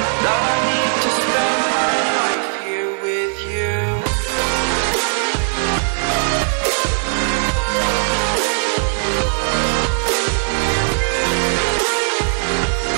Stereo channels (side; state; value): left; silent; 57 dB below the other